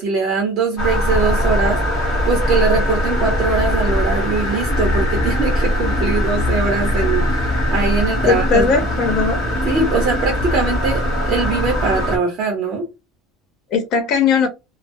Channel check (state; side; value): normal; both; correlation 0.45